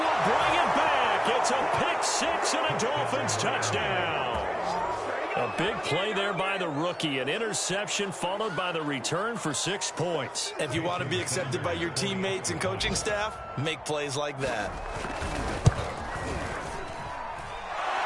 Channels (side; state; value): both; identical; correlation 1.00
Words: bring it back. It's a pick six and a Dolphins touchdown. A big play there by the rookie. An interception followed by the return for 6 points. If you want to be accepted by your teammates and coaching staff, make plays like that.